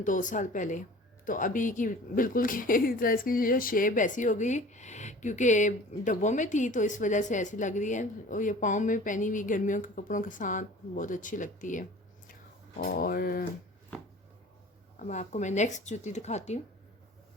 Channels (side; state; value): both; normal; correlation 0.44